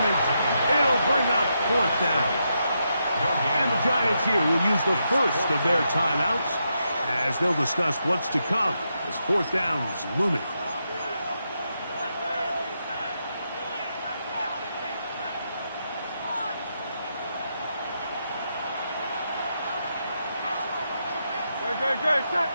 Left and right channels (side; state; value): both; inverted; correlation -0.83